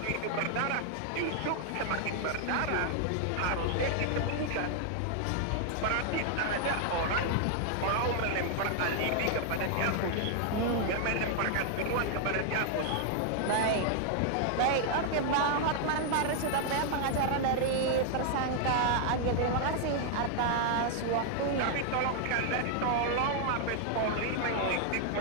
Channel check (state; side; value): different; both; correlation 0.00